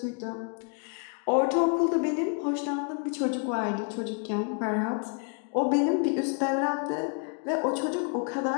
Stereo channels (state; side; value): quieter; right; 38.7 dB